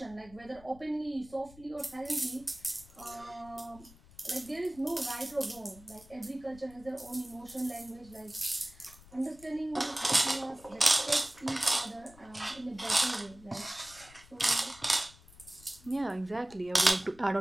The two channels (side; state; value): left; noise; rumble, 22 dB below the sound